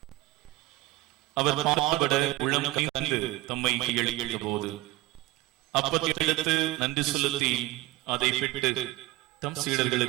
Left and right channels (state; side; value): quieter; left; 19.0 dB